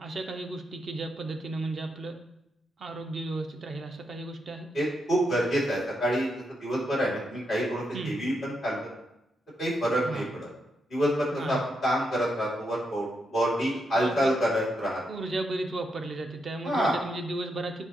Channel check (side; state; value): both; normal; correlation 0.82